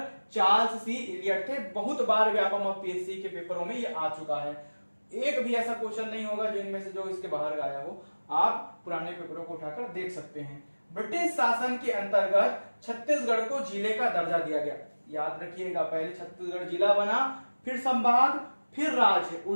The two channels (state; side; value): inverted; both; correlation -1.00